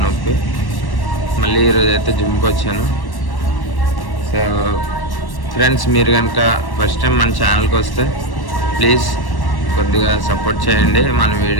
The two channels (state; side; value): late; right; 1.1 ms